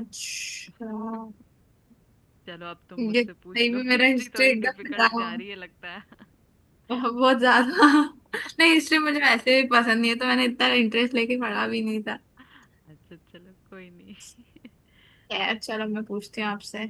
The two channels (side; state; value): both; identical; correlation 1.00